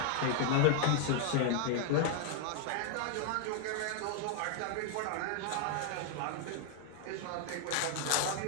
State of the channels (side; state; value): both; different; correlation 0.00